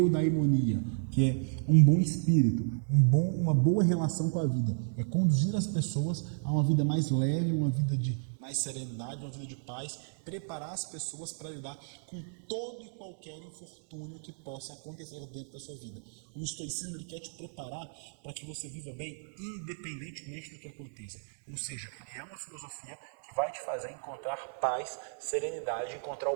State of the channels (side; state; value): left; silent; digital silence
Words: que é um bom espírito, uma boa relação com a vida. É conduzir as pessoas a uma vida mais leve, uma vida de mais serenidade, uma vida de paz, preparar as pessoas para lidar com todo e qualquer infortúnio que possa acontecer dentro da sua vida. O estoicismo ele quer te preparar para que você viva bem independentemente do que aconteça. Ou seja, ele é uma filosofia que vai te fazer encontrar paz, serenidade, encontrar